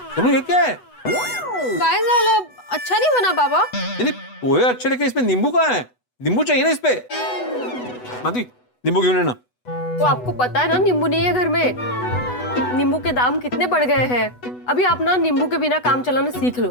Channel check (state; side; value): late; right; 8.1 ms